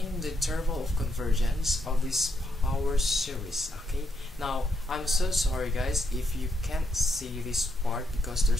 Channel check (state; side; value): normal; both; correlation 0.78